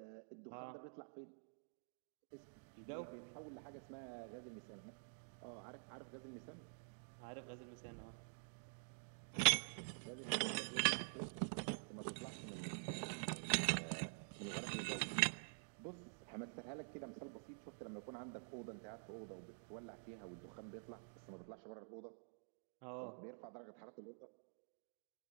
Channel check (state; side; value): silent; left; digital silence